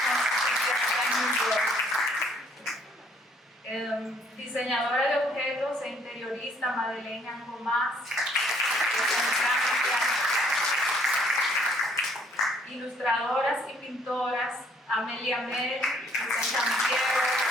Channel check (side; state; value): both; normal; correlation 0.63